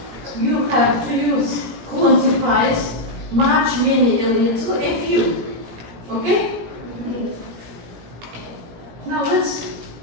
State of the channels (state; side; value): late; left; 17 ms